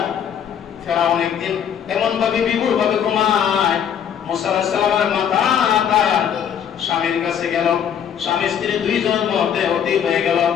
ফেরাউন একদিন এমন ভাবে বিভোর ভাবে ঘুমায়, মূসা আলাইহিস সালামের মাথা তার স্বামীর কাছে গেল। স্বামী স্ত্রী দুইজনের মধ্যে অতীত হয়ে গেল,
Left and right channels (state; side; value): quieter; right; 8.6 dB